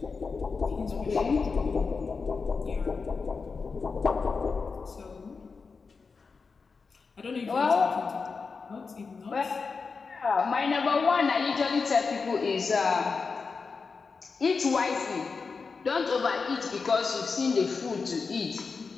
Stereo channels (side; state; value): right; quieter; 4.8 dB